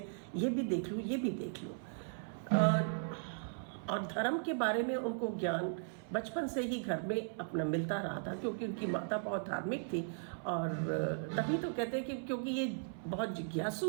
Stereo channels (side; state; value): left; silent; 53 dB below the other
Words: ये भी देख लूँ, ये भी देख लूँ। और धर्म के बारे में उनको ज्ञान बचपन से ही घर में अपना मिलता रहा था, क्योंकि उनकी माता बहुत धार्मिक थी। और तभी तो कहते हैं कि क्योंकि ये बहुत